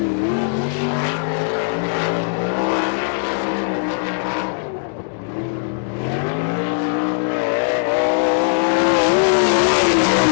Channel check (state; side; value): silent; right; 66 dB below the other